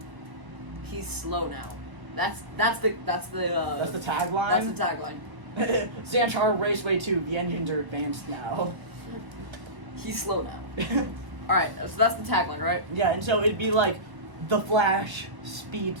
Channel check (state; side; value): late; left; 1.1 ms